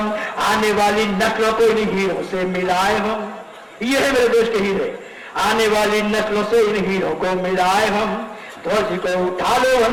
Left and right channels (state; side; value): identical; both; correlation 1.00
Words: आने वाली नस्लों को इन हीरों से मिलाए हम, ये है मेरे देश के हीरे, आने वाली नस्लों से इन हीरों को मिलाए हम। ध्वज को उठा लो